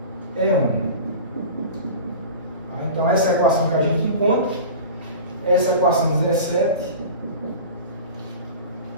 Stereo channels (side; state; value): both; inverted; correlation -0.35